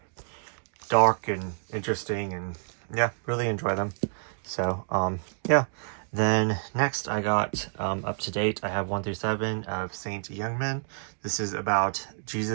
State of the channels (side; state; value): left; silent; digital silence